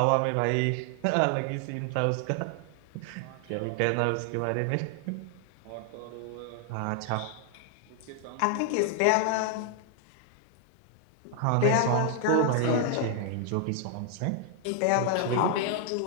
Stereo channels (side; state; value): both; different; correlation 0.00